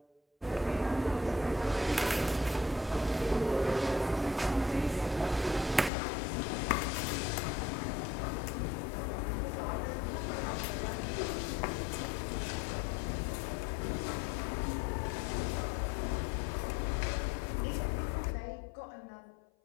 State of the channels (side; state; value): right; drops out; at 5.9 s